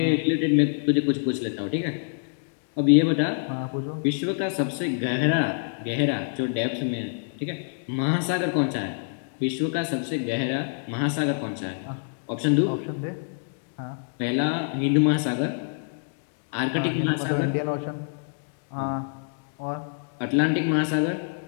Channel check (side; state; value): right; silent; digital silence